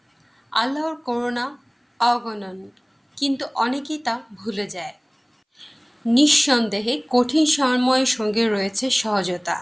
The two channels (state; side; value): identical; both; correlation 1.00